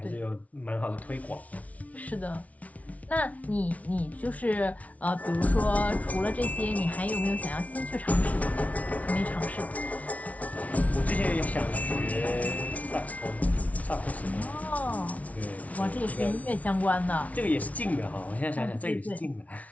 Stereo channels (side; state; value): right; late; 0.069 ms